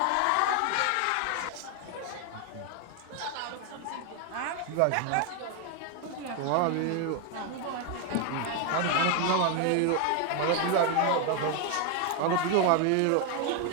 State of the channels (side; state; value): both; different; correlation 0.01